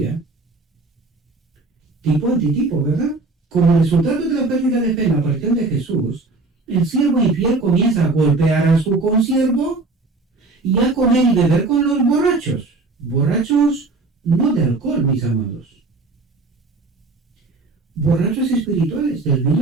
Tipo antitipo, ¿verdad? Como resultado de la pérdida de fe en la aparición de Jesús, el siervo infiel comienza a golpear a su consiervo y a comer y beber con los borrachos. Borrachos no de alcohol, mis amados. Borrachos espirituales del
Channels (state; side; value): quieter; left; 3.4 dB